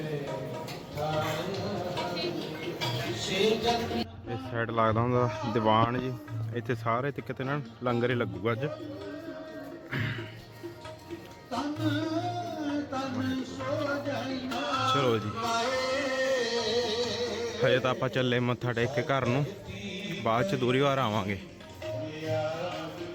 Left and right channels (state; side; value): identical; both; correlation 1.00